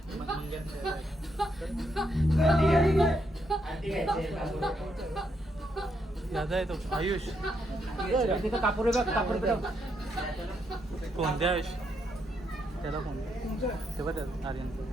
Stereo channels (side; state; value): both; normal; correlation 0.78